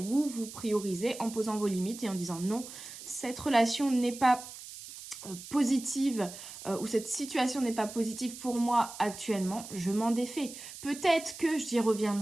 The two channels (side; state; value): right; noise; hiss, 13 dB below the sound